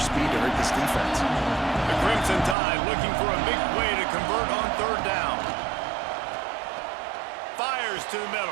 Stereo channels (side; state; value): left; drops out; at 2.6 s